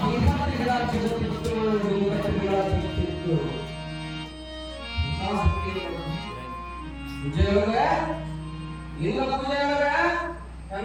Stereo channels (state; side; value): identical; both; correlation 1.00